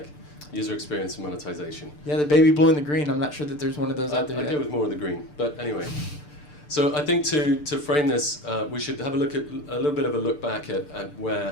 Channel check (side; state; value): right; late; 6.7 ms